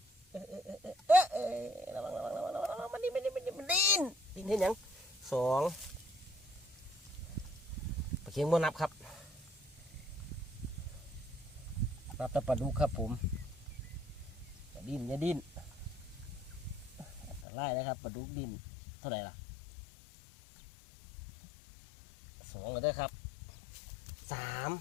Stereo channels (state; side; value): drops out; right; at 17.4 s